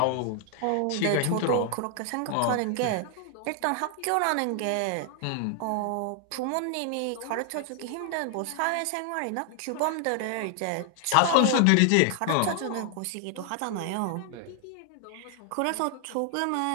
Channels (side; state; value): both; different; correlation 0.00